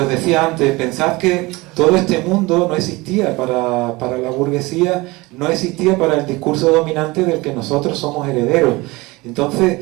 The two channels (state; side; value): quieter; left; 22.6 dB